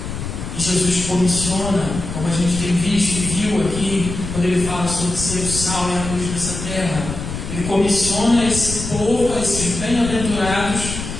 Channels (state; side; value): noise; left; rumble, 7 dB below the sound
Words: E Jesus comissiona, como a gente tem visto e viu aqui, quando ele fala sobre ser o sal e a luz dessa terra, ele comissiona esse povo, esses bem-aventurados,